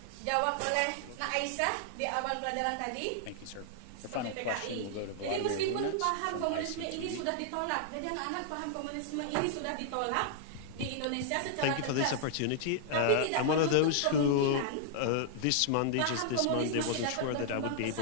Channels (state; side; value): different; both; correlation -0.01